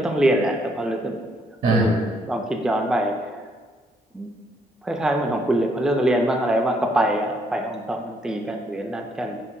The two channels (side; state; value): both; normal; correlation 0.71